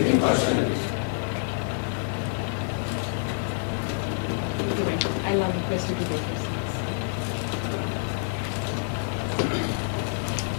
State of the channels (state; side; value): silent; right; digital silence